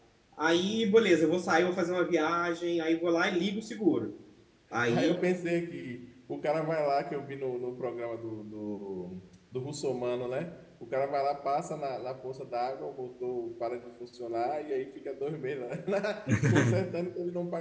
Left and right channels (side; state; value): both; identical; correlation 1.00